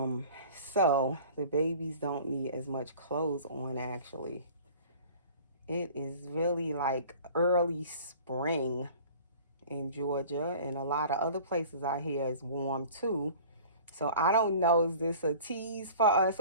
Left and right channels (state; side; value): inverted; both; correlation -0.45